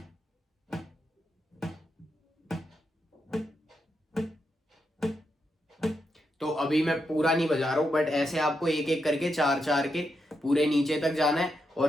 तो अभी मैं पूरा नहीं बजा रहा हूँ, बट ऐसे आपको एक एक करके 4 4 के पूरे नीचे तक जाना है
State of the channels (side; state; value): both; normal; correlation 0.84